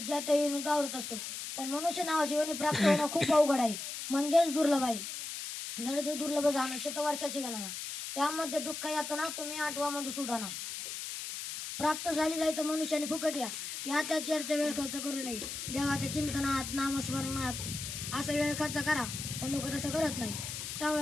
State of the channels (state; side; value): noise; left; hiss, 6 dB below the sound